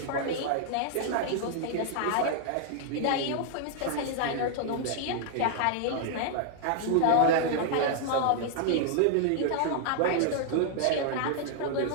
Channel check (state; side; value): different; both; correlation 0.00